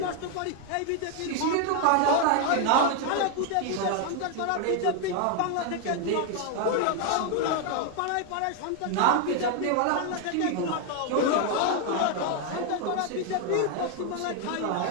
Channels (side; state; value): both; different; correlation 0.00